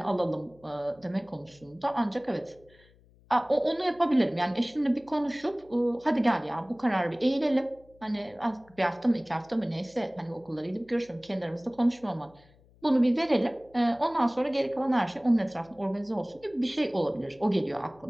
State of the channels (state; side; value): noise; left; hum, 29 dB below the sound